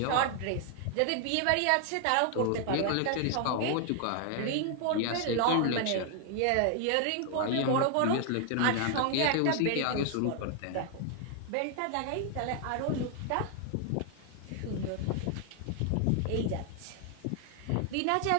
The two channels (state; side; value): different; both; correlation 0.00